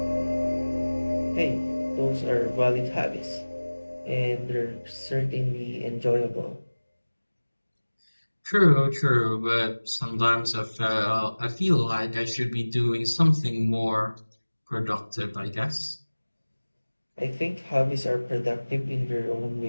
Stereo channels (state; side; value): inverted; both; correlation -1.00